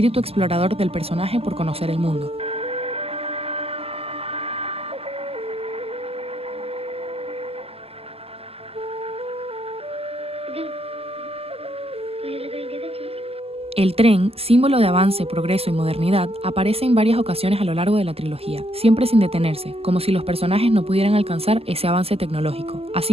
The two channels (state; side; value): late; left; 0.29 ms